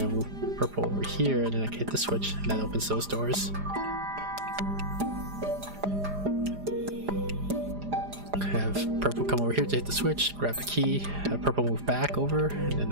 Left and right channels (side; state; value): left; late; 4.9 ms